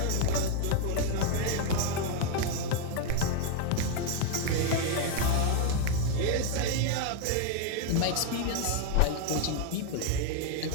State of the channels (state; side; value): different; both; correlation 0.00